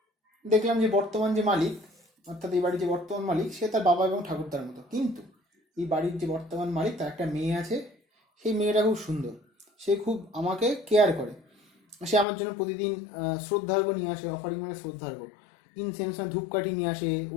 দেখলাম যে বর্তমান যে মালিক, অর্থাৎ এই বাড়ির যে বর্তমান মালিক, সে তার বাবা এবং ঠাকুরদার মতো, কিন্তু এই বাড়ির যে বর্তমান মালিক তার একটা মেয়ে আছে, সেই মেয়েটা খুব সুন্দর, সে খুব আমাকে কেয়ার করে, সে আমার জন্য প্রতিদিন শ্রদ্ধার্ঘ্য নিয়ে আসে, অফারিং মানে শ্রদ্ধার্ঘ্য, ইনসেন্স মানে ধূপকাঠি নিয়ে আসে,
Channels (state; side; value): drops out; right; at 12.2 s